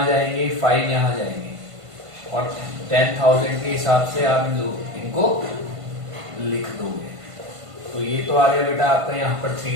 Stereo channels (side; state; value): left; late; 1.5 ms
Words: जाएंगे, 5 यहाँ जाएंगे और 10,000 के हिसाब से आप इनको लिख दोगे. तो ये तो आ गया बेटा आपका यहाँ पर 3